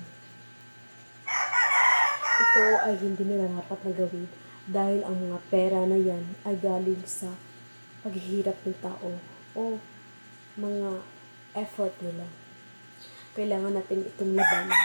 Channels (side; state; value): both; inverted; correlation -1.00